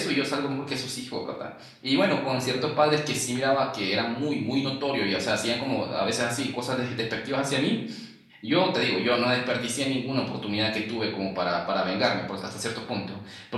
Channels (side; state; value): both; identical; correlation 1.00